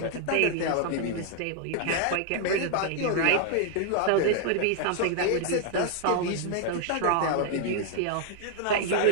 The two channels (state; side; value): different; both; correlation 0.00